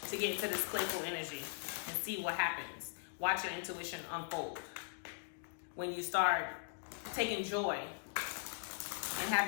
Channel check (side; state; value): right; silent; digital silence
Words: to get into this playful energy and see what happens. Watch your intuition unfold. When you start taking joy and